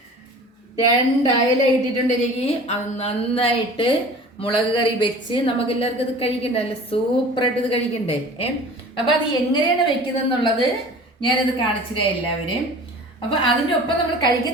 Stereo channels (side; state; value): both; normal; correlation 0.42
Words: 2 അയല ഇട്ടിട്ടുണ്ട്. എനിക്ക് അത് നന്നായിട്ട് മുളക് കറി വെച്ച് നമുക്ക് എല്ലാവർക്കും ഇത് കഴിക്കണ്ടേ, നല്ല സൂപ്പറായിട്ട് ഇത് കഴിക്കണ്ടേ. അപ്പം അത് എങ്ങനെയാണ് വെക്കുന്നതെന്നുള്ളത് ഞാനത് കാണിച്ചില്ല എല്ലാവരും. അപ്പം അതിൻ്റെ ഒപ്പം നമ്മൾ